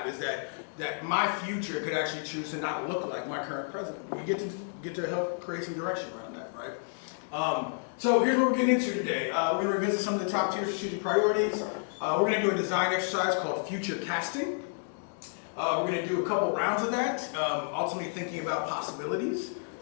is that my future could actually choose to not look like my current president. We get to help create some direction around that, right? So here's what we're getting into today. We're going to revisit some of the top tier strategic priorities. We're going to do a design exercise called future casting. We're going to do a couple rounds of that, ultimately thinking about possibilities.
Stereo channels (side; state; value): right; silent; digital silence